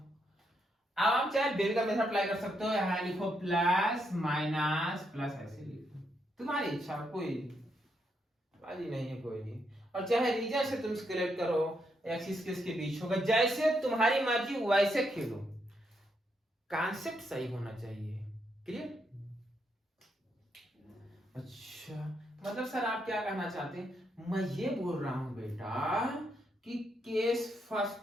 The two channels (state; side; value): normal; both; correlation 0.79